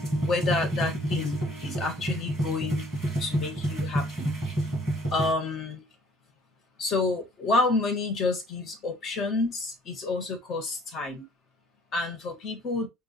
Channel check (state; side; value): normal; both; correlation 0.58